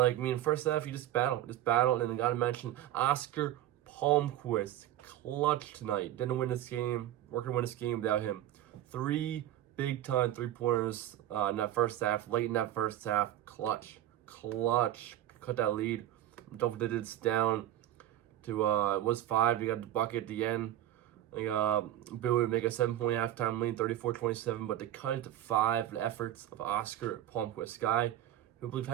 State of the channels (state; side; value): quieter; left; 12.8 dB